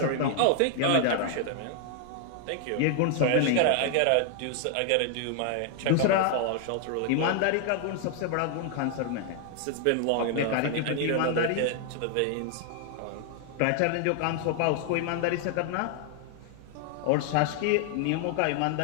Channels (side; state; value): both; different; correlation 0.00